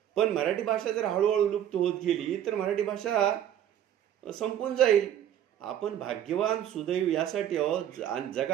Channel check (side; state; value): left; quieter; 10.6 dB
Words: पण मराठी भाषा जर हळूहळू लुप्त होत गेली तर मराठी भाषा संपून जाईल. आपण भाग्यवान सुदैव यासाठी आहोत.